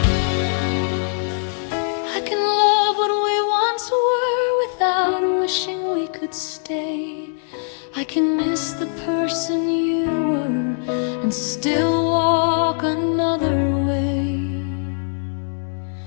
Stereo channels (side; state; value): right; silent; digital silence